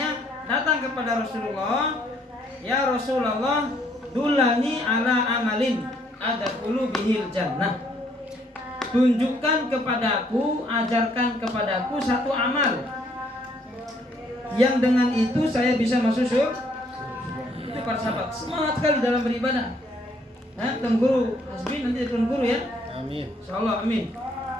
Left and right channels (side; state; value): both; normal; correlation 0.67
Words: datang kepada Rasulullah, ya Rasulullah, dulani ala amalin adkhulu bihil jannah. Tunjukkan kepadaku, ajarkan kepadaku satu amal yang dengan itu saya bisa masuk surga. Itu para sahabat semangat sekali dalam beribadah. Nah, Tuan Guru Hasbi nanti Tuan Guru ya. Amin. Insyaallah amin.